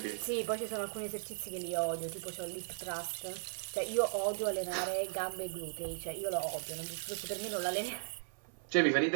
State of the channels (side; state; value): left; silent; 53 dB below the other